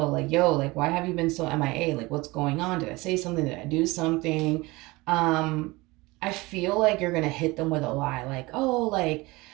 like, yo, like, why have you been so MIA? Like, what's going on? Did I say something? Did I do something? I feel like you're going to hit them with a lie. Like, oh, like,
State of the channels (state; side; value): quieter; left; 22.3 dB